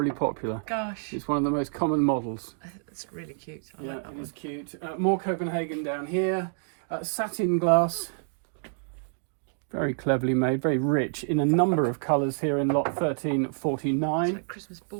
popular. Gosh, It's one of the most common models. it's really cute. I Yeah, like that it is one. cute. More Copenhagen down here. Satin glass. Very cleverly made, very rich in a number of colours here in lot 1349. It's like Christmas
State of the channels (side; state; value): left; silent; digital silence